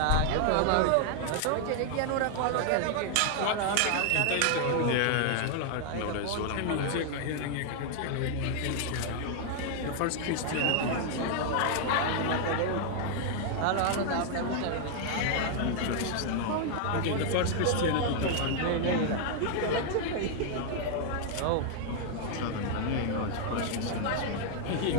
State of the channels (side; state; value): both; different; correlation 0.00